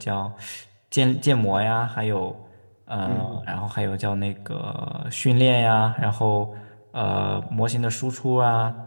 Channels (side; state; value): both; inverted; correlation -1.00